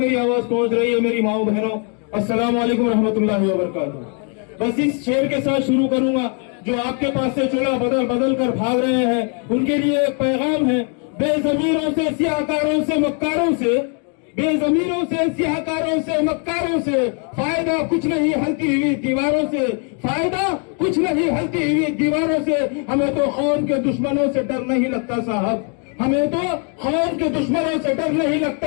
आवाज पहुँच रही है मेरी माओ बहनों, अस्सलाम वालेकुम रहमतुल्लाहि व बरकातुहू। बस इस शेर के साथ शुरू करूंगा। जो आपके पास से चूल्हा बदल बदल कर भाग रहे हैं उनके लिए एक पैगाम है। बेजमीरों से, सियाहकारों से, मक्कारों से, बेजमीरों से, सियाहकारों से, मक्कारों से फायदा कुछ नहीं हलती हुई दीवारों से, फायदा कुछ नहीं हलती हुई दीवारों से। हमें तो कौम के दुश्मनों से डर नहीं लगता साहब, हमें तो कौम के दुश्मनों से डर नहीं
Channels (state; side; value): quieter; right; 39.5 dB